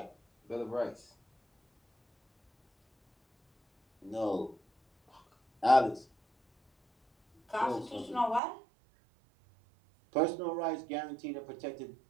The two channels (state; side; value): drops out; left; at 8.4 s